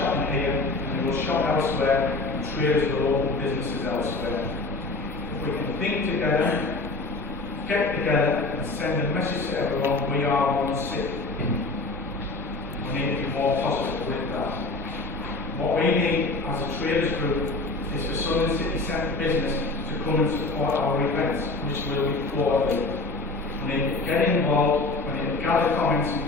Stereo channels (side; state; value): right; quieter; 3.3 dB